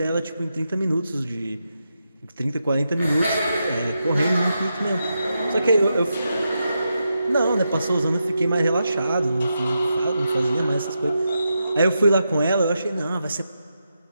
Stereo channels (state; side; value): inverted; both; correlation -0.86